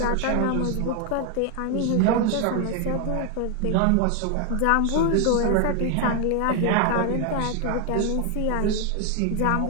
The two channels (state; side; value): different; both; correlation 0.01